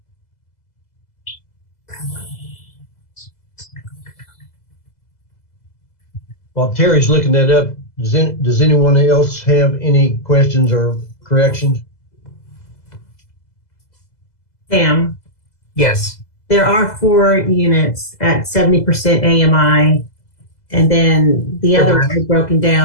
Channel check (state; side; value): late; right; 2.0 ms